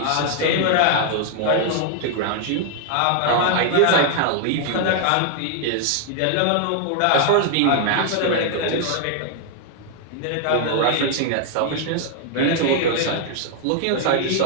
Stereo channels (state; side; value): different; both; correlation 0.00